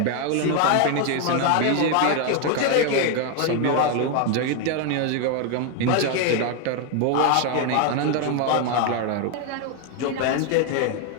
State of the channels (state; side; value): different; both; correlation 0.01